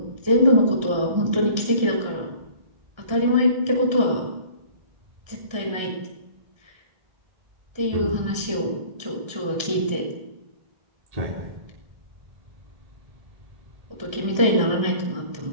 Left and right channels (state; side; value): late; left; 1.3 ms